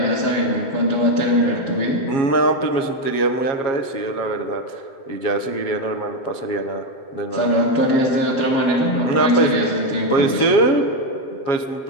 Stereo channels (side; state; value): right; late; 7.3 ms